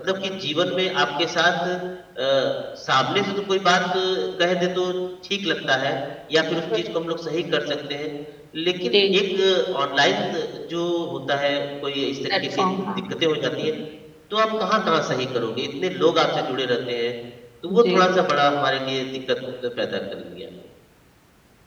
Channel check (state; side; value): identical; both; correlation 1.00